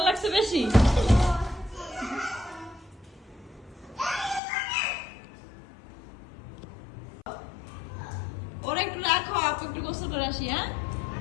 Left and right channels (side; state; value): right; drops out; at 4.4 s